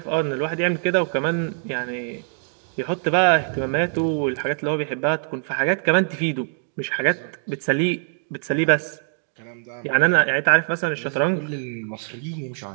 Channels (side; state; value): left; silent; 63 dB below the other